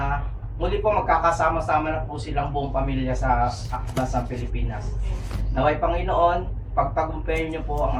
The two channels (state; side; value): identical; both; correlation 1.00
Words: muli po magkakasama-sama na po silang buong pamilya sa bansang Pilipinas. Naway Panginoon, pagtagumpayan niyo po